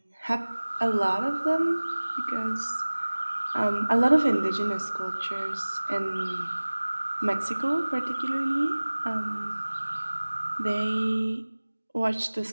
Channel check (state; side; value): inverted; both; correlation -1.00